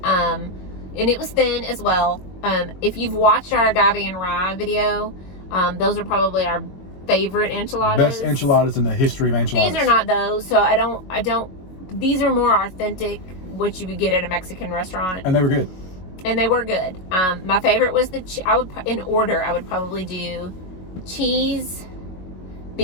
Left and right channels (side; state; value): right; late; 22 ms